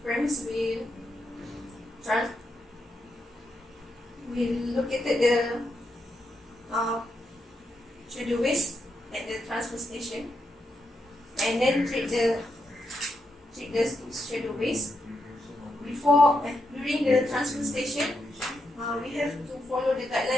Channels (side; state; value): both; normal; correlation 0.83